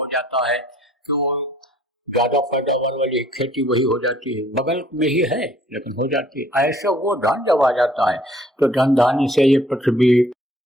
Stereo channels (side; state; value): both; normal; correlation 0.58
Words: जाता है कि वो ज्यादा पैदावार वाली खेती वही हो जाती है। बगल में ही है लेकिन हो जाती है। ऐसे वो धन जब आ जाता है तो धन धान्य से ये पृथ्वी